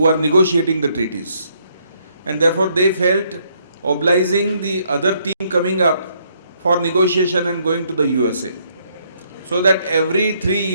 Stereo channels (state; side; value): inverted; both; correlation -0.70